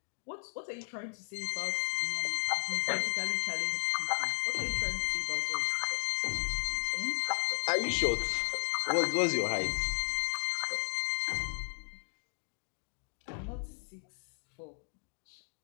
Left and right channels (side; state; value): right; silent; digital silence